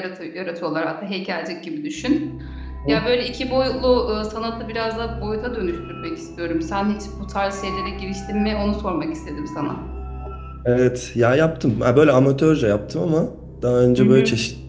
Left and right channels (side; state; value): both; identical; correlation 1.00